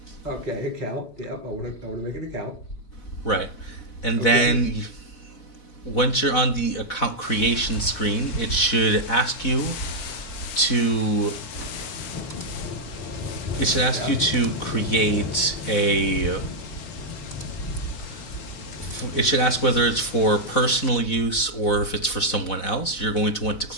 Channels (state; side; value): late; right; 4.0 ms